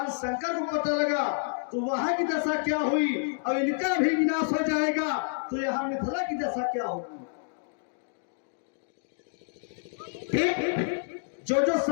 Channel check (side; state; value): right; silent; digital silence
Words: शंकर को पता लगा तो वहां की दशा क्या हुई और इनका भी विनाश हो जाएगा तो यहाँ मिथिला की दशा क्या होगी? जो जो